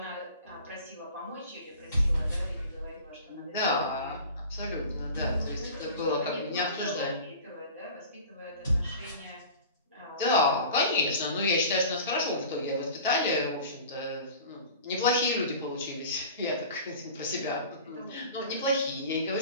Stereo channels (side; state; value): both; inverted; correlation -0.39